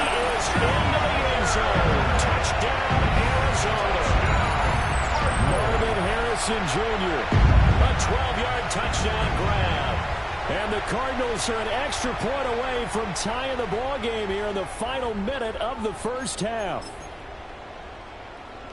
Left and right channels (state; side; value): identical; both; correlation 1.00